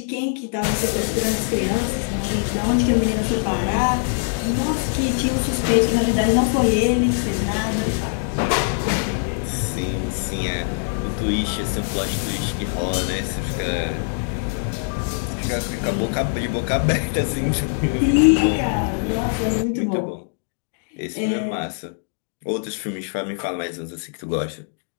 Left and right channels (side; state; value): right; silent; digital silence